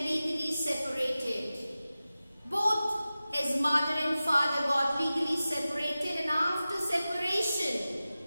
separated. Both his mother and father got legally separated, and after separation,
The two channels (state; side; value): inverted; both; correlation -0.95